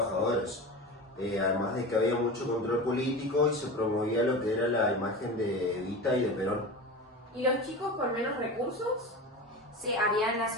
Además de que había mucho control político y se promovía lo que era la imagen de Evita y de Perón. ¿Y los chicos con menos recursos? Se habían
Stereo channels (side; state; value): both; normal; correlation 0.29